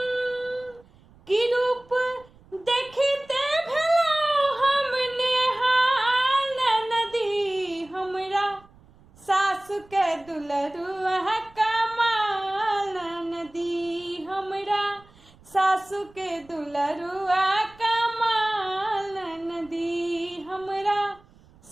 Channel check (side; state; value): right; noise; rumble, 27 dB below the sound